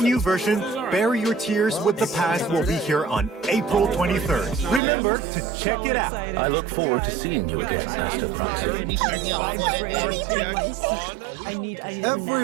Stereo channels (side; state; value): left; drops out; at 4.8 s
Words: version, Bury Your Tears with the Past, will be here on April 23rd. Remember to check it out. I look forward to seeing you again, Master Proxy.